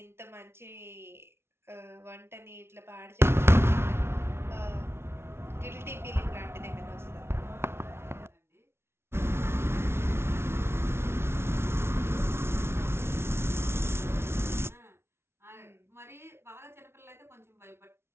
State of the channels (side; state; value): left; late; 0.12 ms